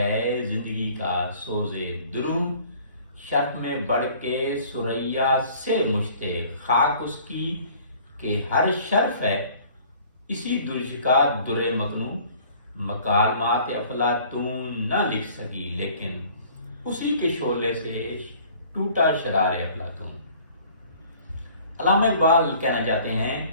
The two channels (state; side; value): inverted; both; correlation -0.52